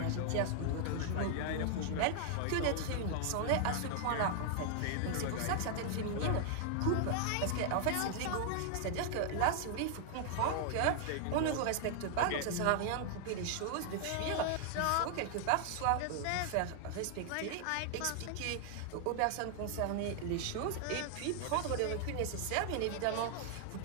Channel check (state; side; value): different; both; correlation 0.00